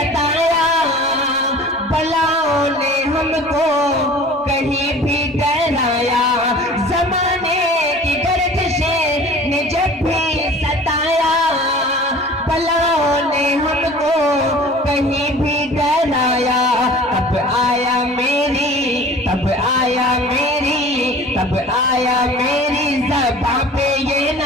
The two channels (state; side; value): normal; both; correlation 0.44